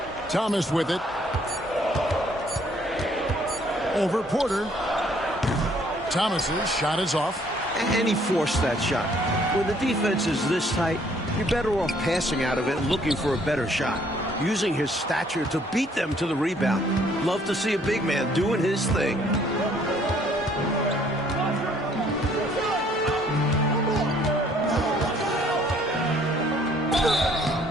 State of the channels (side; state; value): both; normal; correlation 0.62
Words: Thomas with it. Over Porter. Thomas's shot is off. And he forced that shot. When the defense is this tight, you're better off passing out of it and looking for a better shot. Using his stature to beat them to the rebound. Love to see a big man doing his thing.